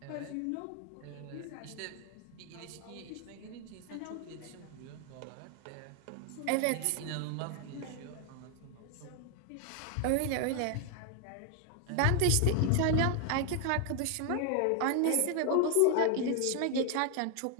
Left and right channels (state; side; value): different; both; correlation 0.00